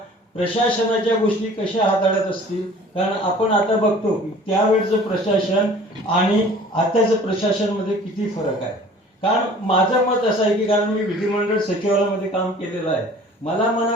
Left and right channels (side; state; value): both; normal; correlation 0.48